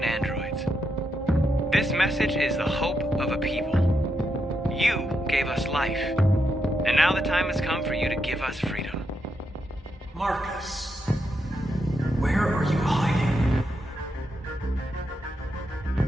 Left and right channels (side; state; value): both; normal; correlation 0.83